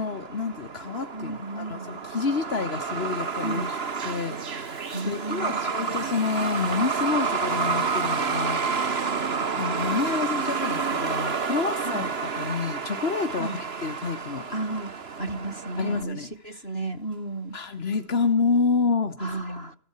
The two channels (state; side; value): late; right; 2.9 ms